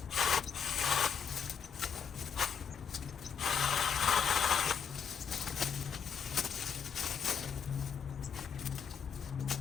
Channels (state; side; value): quieter; right; 7.1 dB